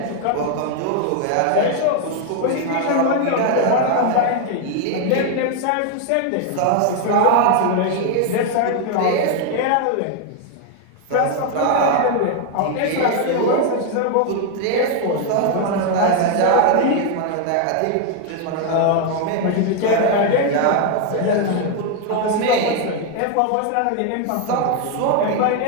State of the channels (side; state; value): both; different; correlation 0.00